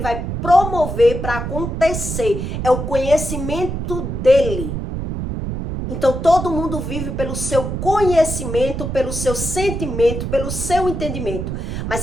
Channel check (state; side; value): noise; right; rumble, 4 dB below the sound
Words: vai promover para acontecer. É o conhecimento dele. Então, todo mundo vive pelo seu conhecimento, pelo seu sentimento, pelo seu entendimento. Mas